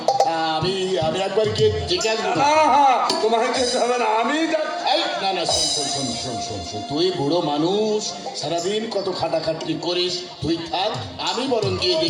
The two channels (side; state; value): both; identical; correlation 1.00